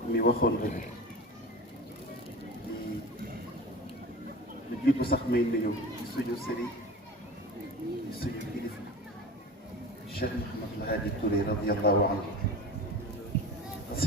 mi waxoon rek di lu jiitu sax may nuyu ci suñu sëriñ ci suñu kilifa Cheikh Mouhamadou Hadi Touré radiyallahu anhu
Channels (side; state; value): both; normal; correlation 0.33